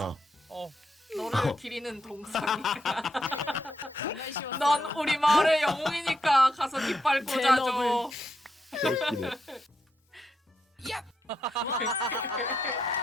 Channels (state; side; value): normal; both; correlation 0.81